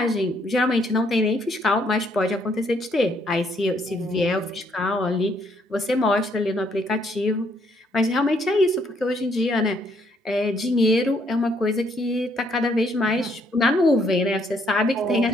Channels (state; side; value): normal; both; correlation 0.70